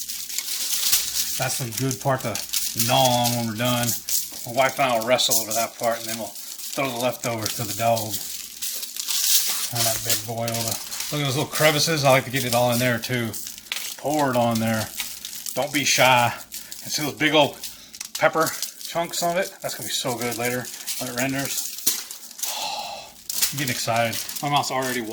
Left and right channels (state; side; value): identical; both; correlation 1.00